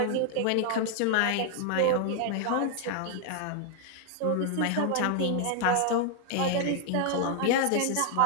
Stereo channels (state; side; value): different; both; correlation 0.00